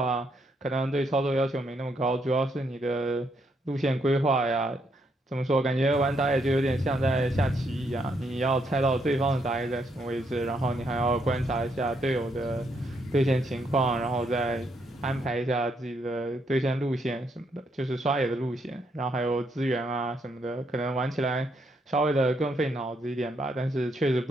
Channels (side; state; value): both; normal; correlation 0.75